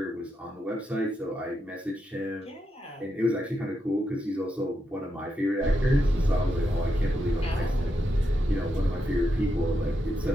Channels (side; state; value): both; normal; correlation 0.84